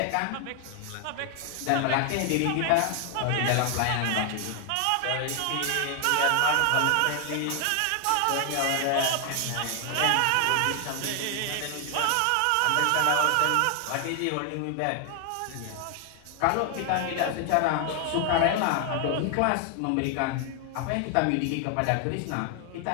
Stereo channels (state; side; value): different; both; correlation 0.00